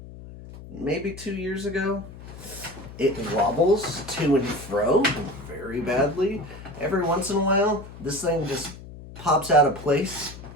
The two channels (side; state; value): left; noise; hum, 15 dB below the sound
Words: maybe 2 years ago. It wobbles to and fro very badly. Every once in a while, this thing just pops out of place